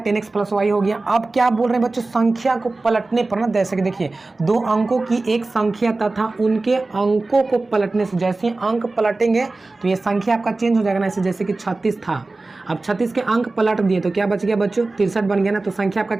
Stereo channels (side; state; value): left; quieter; 3.3 dB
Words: 10x प्लस y हो गया, अब क्या बोल रहे हैं बच्चों, संख्या को पलटने पर ना, जैसे कि देखिए दो अंकों की एक संख्या तथा उनके अंकों को पलटने से, जैसे अंक पलटेंगे तो ये संख्या आपका चेंज हो जाएगा ना। ऐसे जैसे कि 36 था, अब 36 के अंक पलट दिए तो क्या बच गया बच्चों, 63 बन गया ना। तो संख्या आपका